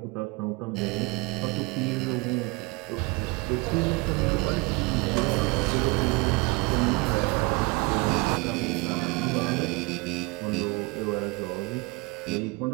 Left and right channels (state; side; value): quieter; left; 26.2 dB